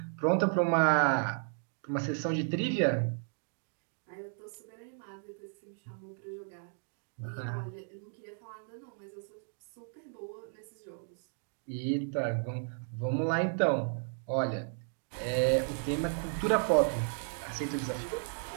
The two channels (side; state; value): left; silent; 55 dB below the other